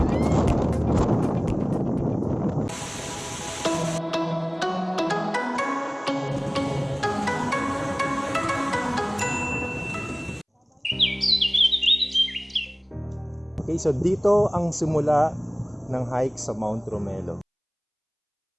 Okay, so dito ang simula ng hike sa Mount Romelo.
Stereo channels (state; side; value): identical; both; correlation 1.00